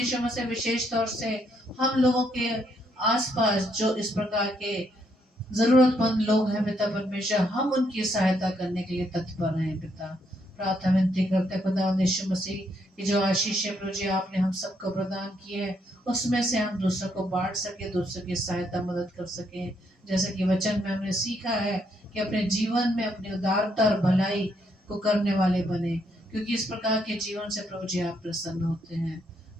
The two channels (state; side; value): normal; both; correlation 0.74